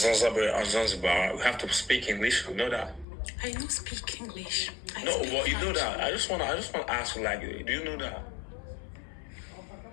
we have to speak English. You know that? I don't speak English. No, well, you know that. I just wanna ask you, like, do you know that?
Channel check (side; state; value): right; drops out; at 3.1 s